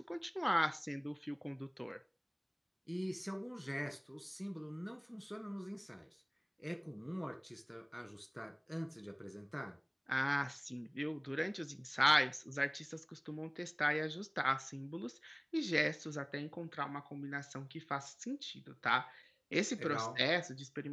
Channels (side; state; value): both; identical; correlation 1.00